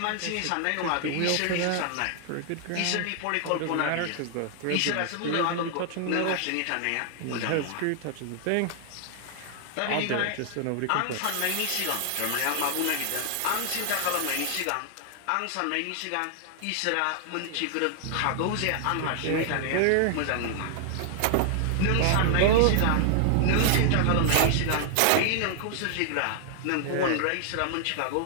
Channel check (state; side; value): different; both; correlation 0.00